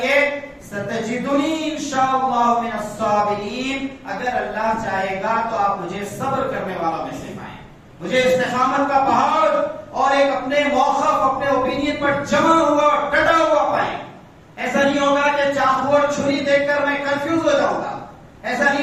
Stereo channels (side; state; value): both; identical; correlation 1.00